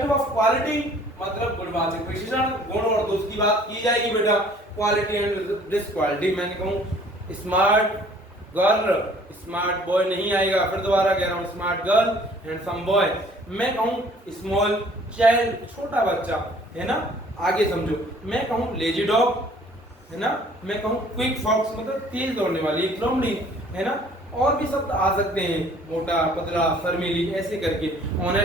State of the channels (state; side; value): normal; both; correlation 0.55